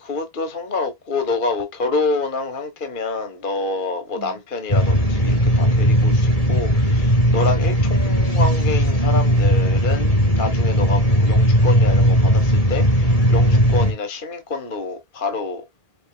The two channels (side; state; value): right; late; 1.7 ms